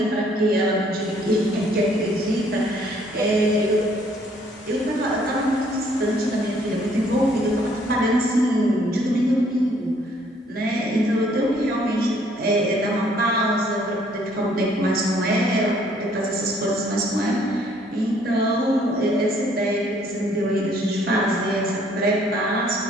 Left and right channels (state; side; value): normal; both; correlation 0.63